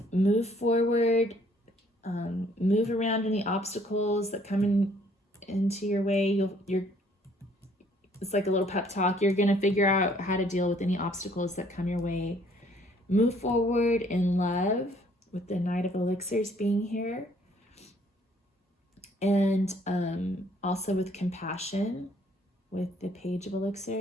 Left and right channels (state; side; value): normal; both; correlation 0.62